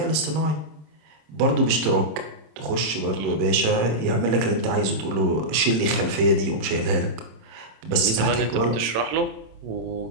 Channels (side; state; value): left; late; 27 ms